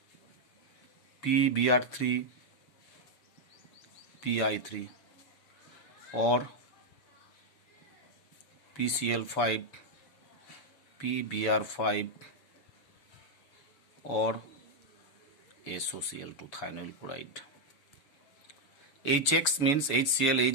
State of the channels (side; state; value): right; late; 7.0 ms